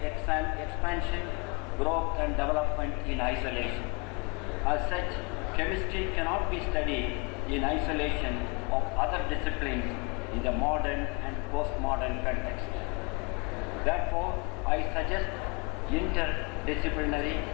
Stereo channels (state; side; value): quieter; right; 31.7 dB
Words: expansion, growth and development in isolation. As such, chemistry cannot be studied in isolation of other disciplines in the modern and postmodern context. Therefore, I suggest interdisciplinary